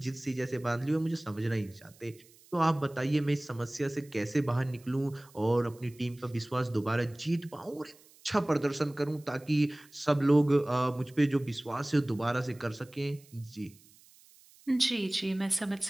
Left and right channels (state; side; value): noise; right; hiss, 26 dB below the sound